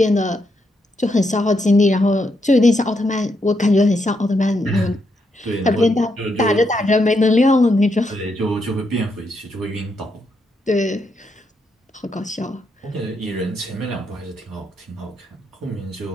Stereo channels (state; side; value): normal; both; correlation 0.79